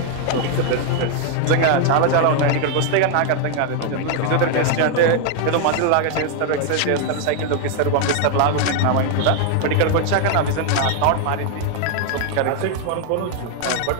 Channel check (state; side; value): different; both; correlation 0.00